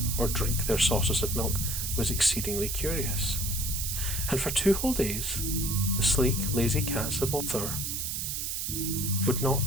or drink their saucers of milk was exceedingly curious. And for 2 whole days, the sleek, lazy cats of Ulthar would not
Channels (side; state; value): right; noise; hiss, 2 dB below the sound